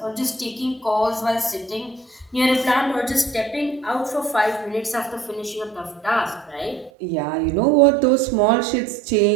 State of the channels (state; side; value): drops out; left; at 6.9 s